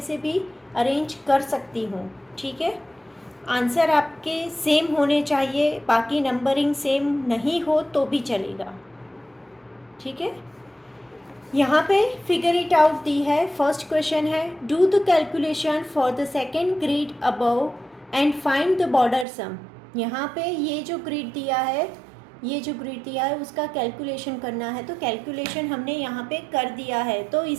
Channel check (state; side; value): drops out; left; at 19.2 s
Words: से भी अरेंज कर सकती हूँ, ठीक है। आंसर आपके सेम होने चाहिए, बाकी नंबरिंग सेम नहीं हो तो भी चलेगा, ठीक है। यहाँ पे फिगर इट आउट दी है। फर्स्ट क्वेश्चन है, do the calculation for the second grid above and find the border sum. यहाँ पे ये जो ग्रिड दिया है, ये जो ग्रिड दिया है उसका कैलकुलेशन करना है, तो कैलकुलेशन हमने यहाँ पे कर दिया है, तो